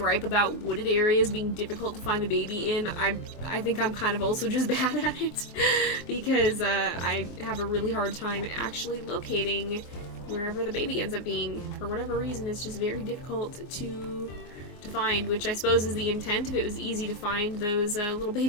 about wooded areas being difficult to find the baby in, I think I'm kind of also just bad at it. Because I have a really hard time actually locating wherever the baby ends up being. For whatever reason, it's just very difficult to find, which I suppose is the intent. If it was easy to find, those little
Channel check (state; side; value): late; right; 23 ms